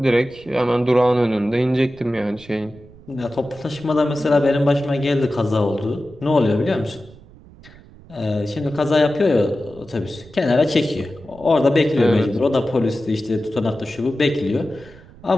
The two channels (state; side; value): noise; right; rumble, 22 dB below the sound